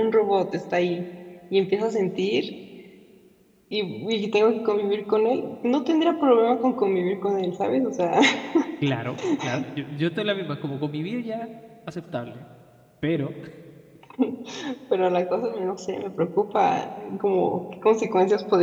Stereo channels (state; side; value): identical; both; correlation 1.00